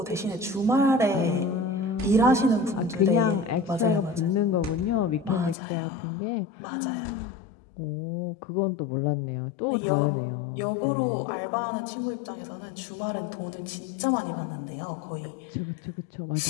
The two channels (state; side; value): drops out; right; at 5.6 s